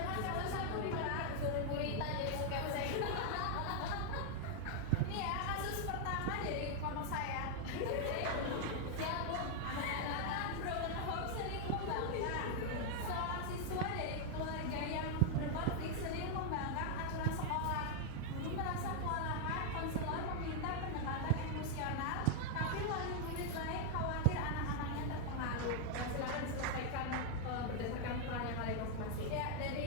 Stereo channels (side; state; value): both; different; correlation 0.00